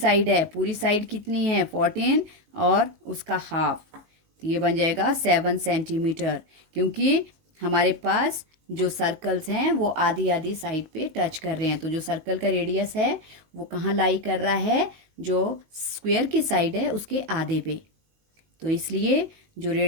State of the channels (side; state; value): left; late; 19 ms